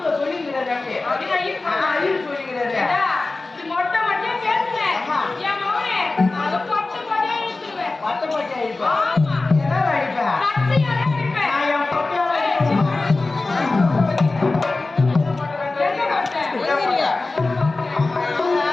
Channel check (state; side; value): quieter; right; 3.4 dB